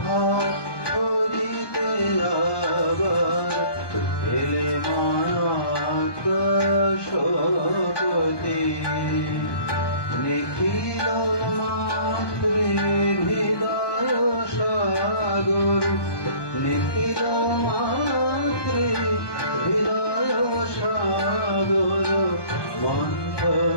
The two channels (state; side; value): late; right; 1.2 ms